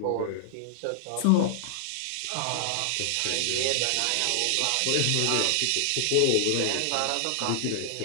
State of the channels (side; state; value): both; different; correlation -0.01